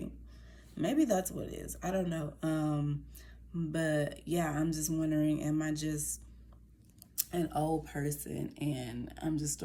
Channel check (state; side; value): identical; both; correlation 1.00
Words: maybe that's what it is. I don't know. But yeah, I'm just wondering, am I just an old person and I'm just